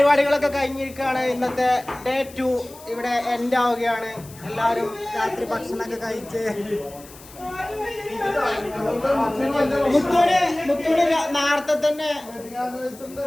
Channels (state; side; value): noise; left; hiss, 20 dB below the sound